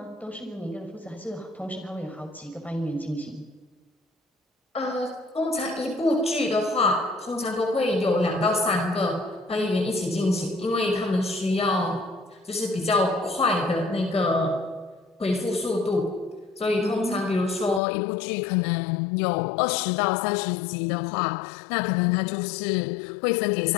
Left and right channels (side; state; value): right; drops out; at 17.8 s